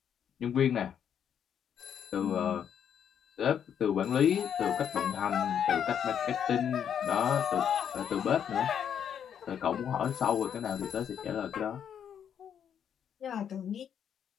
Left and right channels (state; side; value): quieter; right; 8.6 dB